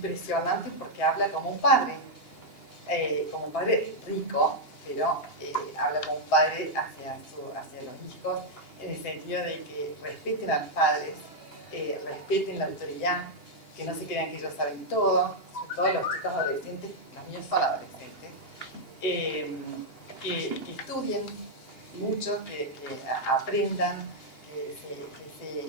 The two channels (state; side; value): late; right; 2.8 ms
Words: porque habla como un padre rico, pero habla como un padre hacia los hijos, en el sentido de que respeten a los padres, respeten la autoridad, que no se crean que ellos saben todo, todos los chicos adolescentes, los míos son adolescentes, que estudien mucho, que aprendan, que